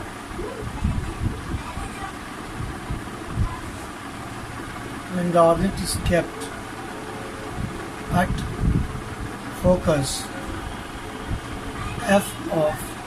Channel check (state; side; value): identical; both; correlation 1.00